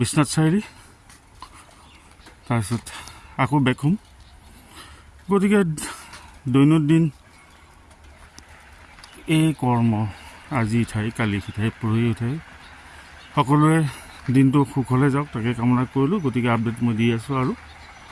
চাৰিআলি, তাৰপিছত আকৌ বেক হ'ম। গতিকে দৈনন্দিন এই কৰ্ম, আজি ইঠাই কালি সিঠাই পৰহি উঠাই, সকলোৱে দিনটো সুখলে যাওক, তাকে কামনা কৰিলোঁ। গতিকে আপডেট মই দি আছোঁ, আৰু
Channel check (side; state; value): both; identical; correlation 1.00